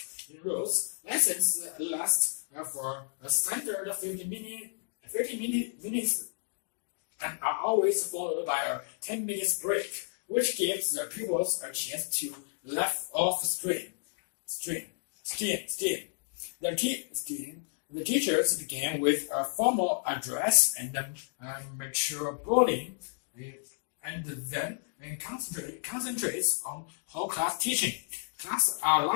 in rows. Lessons last for a standard 50 minutes and are always followed by a 10 minutes break, which gives the pupils a chance to let off steam. The teachers begin with a formal address and mature bullying, and then concentrates on whole class teaching. Classes are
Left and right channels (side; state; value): right; silent; digital silence